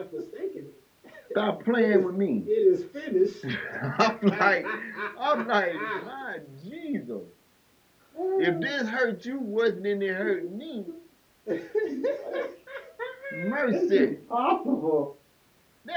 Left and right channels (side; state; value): both; identical; correlation 1.00